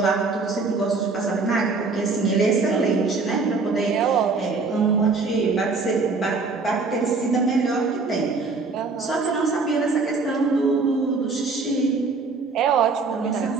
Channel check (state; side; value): quieter; left; 4.2 dB